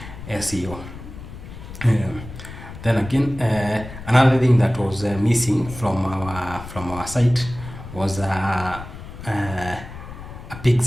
SEO. Then again, another thing that was missing from our site was a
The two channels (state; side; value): noise; left; rumble, 13 dB below the sound